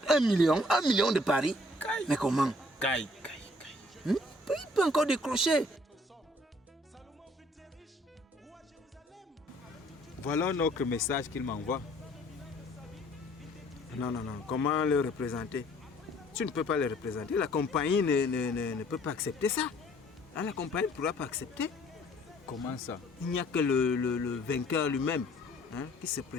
1 million de paris. Mais comment? Il peut encore décrocher. Voilà notre message qu'il m'envoie. Non. Comment le représenter? Tu ne peux pas le représenter. La compagnie ne peut pas accepter ça. Là, la compagnie ne pourra pas accepter. Comment ça? Il n'y a que le vainqueur lui-même, hein, qui se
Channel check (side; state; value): both; normal; correlation 0.59